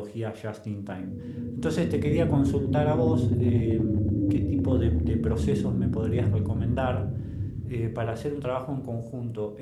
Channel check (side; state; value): both; identical; correlation 1.00